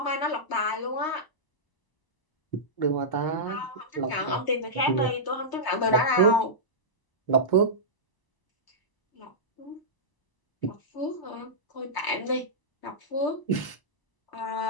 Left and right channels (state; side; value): late; right; 1.0 ms